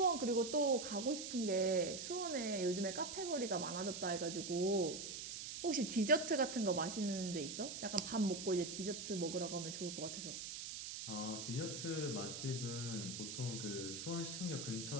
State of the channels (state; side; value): noise; right; hiss, 6 dB below the sound